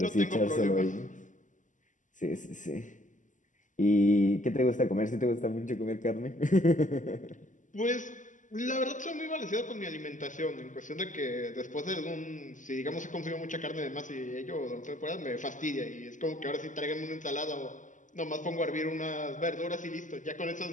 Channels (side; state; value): right; late; 0.37 ms